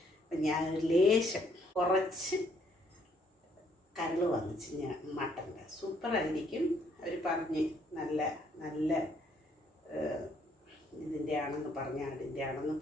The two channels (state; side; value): normal; both; correlation 0.68